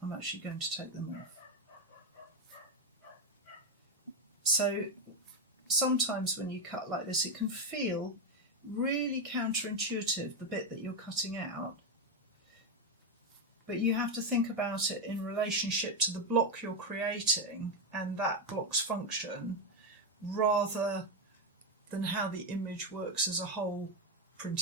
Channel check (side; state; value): both; normal; correlation 0.07